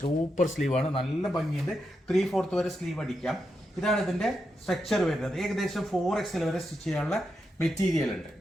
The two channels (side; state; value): both; normal; correlation 0.85